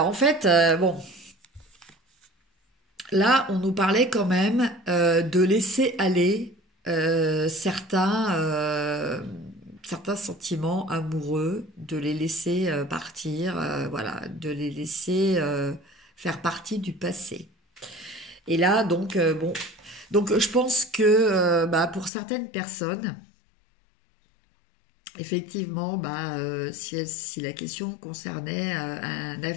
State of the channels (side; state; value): right; drops out; at 22.1 s